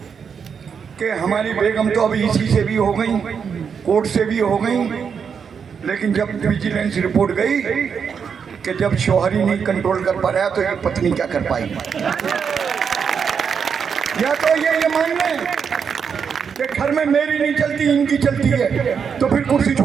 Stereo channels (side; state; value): left; quieter; 6.6 dB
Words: कि हमारी बेगम तो अभी इसी से भी हो गई, कोर्ट से भी हो गई, लेकिन जब विजिलेंस रिपोर्ट गई कि जब शौहर ही नहीं कंट्रोल कर पा रहा तो ये पत्नी क्या कर पाई। या तो ये मान लें कि घर में मेरी नहीं चलती, इनकी चलती है, तो फिर कुर्सी